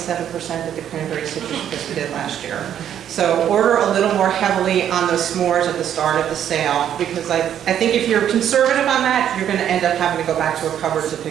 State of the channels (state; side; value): quieter; left; 9.9 dB